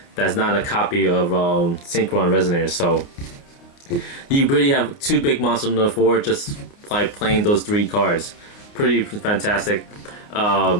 That's not a copy of Synchron Resonator. So you really have two big monsters on the board just by playing those 3 cards. Pretty fantastic.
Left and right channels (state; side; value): late; right; 29 ms